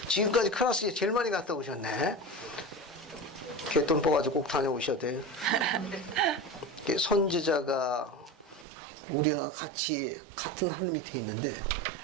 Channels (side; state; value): left; drops out; at 8.7 s